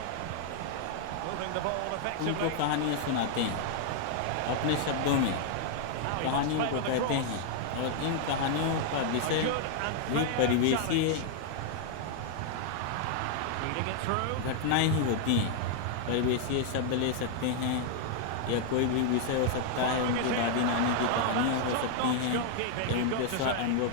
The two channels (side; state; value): both; different; correlation 0.00